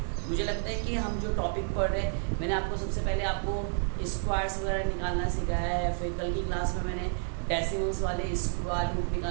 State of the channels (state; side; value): silent; left; 58 dB below the other